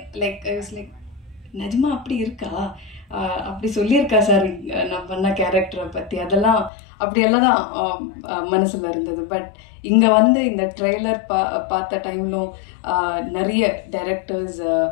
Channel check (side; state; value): right; drops out; at 6.7 s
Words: லைக் நிஜமா அப்படி இருக்கா, அப்படி சொல்லியிருக்கா சார் நான் பண்ண கேரக்டரை பற்றி, அதெல்லாம் அப்படியெல்லாம் தான் மனசில் இருந்தது. பட் இங்கே வந்து இந்த ட்ரெய்லர் பார்த்த டைம்லும் நிறைய டைரக்டர்ஸ்